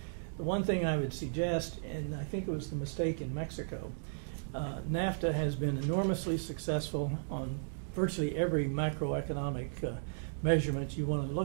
The one thing I would suggest, and I think it was the mistake in Mexico, NAFTA has been enormously successful on virtually every macroeconomic measurement you want to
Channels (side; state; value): left; silent; digital silence